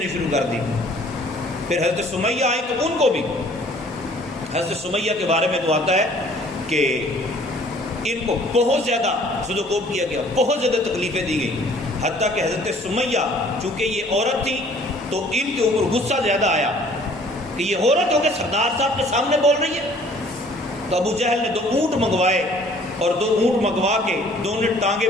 شروع کر دی. پھر حضرت سمیہ آئی تو ان کو بھی حضرت سمیہ کے بارے میں تو آتا ہے کہ ان کو بہت زیادہ سدوکوب کیا گیا، بہت زیادہ تکلیفیں دی گئی. حتیٰ کہ حضرت سمیہ چونکہ یہ عورت تھی تو ان کے اوپر غصہ زیادہ آیا کہ یہ عورت ہو کے سردار صاحب کے سامنے بول رہی ہے. تو ابو جہل نے 2 اونٹ منگوائے اور 2 اونٹ منگوا کے دونوں ٹانگیں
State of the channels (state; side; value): normal; both; correlation 0.55